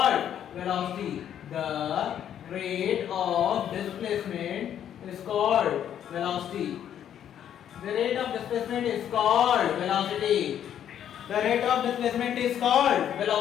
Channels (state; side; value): quieter; right; 9.9 dB